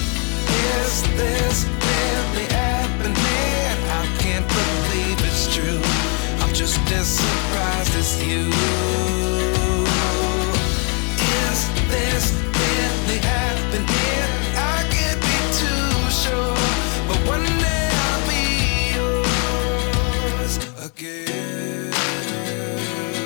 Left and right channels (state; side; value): quieter; right; 36.7 dB